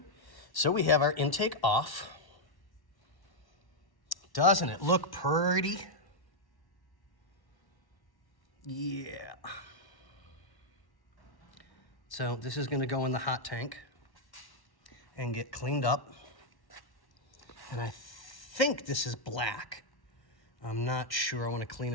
So we have our intake off. Doesn't it look pretty? Yeah. So this is gonna go in the hot tank and get cleaned up. And I think this is black. I'm not sure. I wanna clean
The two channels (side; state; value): right; late; 1.1 ms